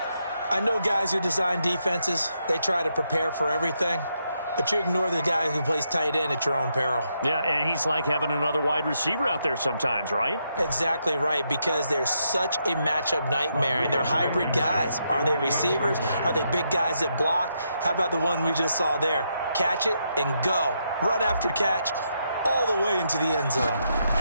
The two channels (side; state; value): both; inverted; correlation -0.80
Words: I know guys who design defenses, they try to prepare for everything. But you ignore the guy who plays tight end at your own peril. Yeah, and he's like having another wide receiver out there sometimes, right? Exactly right, because they're such a matchup nightmare, and they're hybrid guys. Are they receivers? Are they big guys that block? How about the one we just saw there? Catch it and go. Run after catch all the way into the end zone.